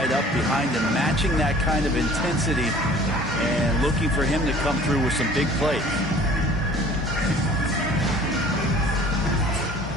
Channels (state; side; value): normal; both; correlation 0.49